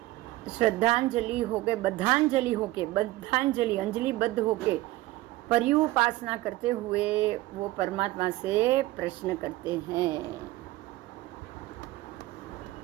श्रद्धांजलि होके, बद्धांजलि अंजलि बद्ध होके पर्युपासना करते हुए वो परमात्मा से प्रश्न करते हैं।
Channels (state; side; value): quieter; left; 17.9 dB